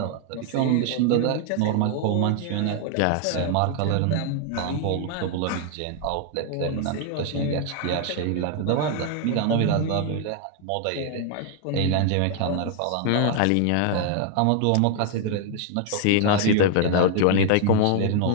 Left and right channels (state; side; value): different; both; correlation 0.00